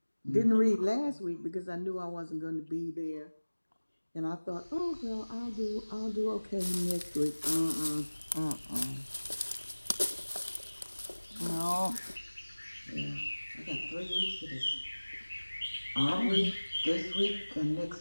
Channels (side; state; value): both; inverted; correlation -1.00